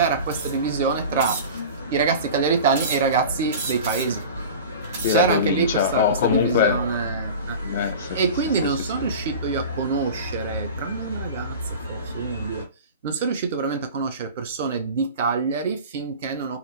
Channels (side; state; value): both; inverted; correlation -0.35